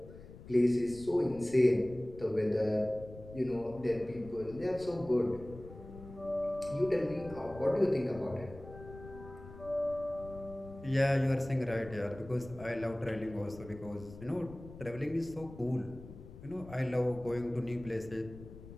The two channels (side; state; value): left; noise; rumble, 16 dB below the sound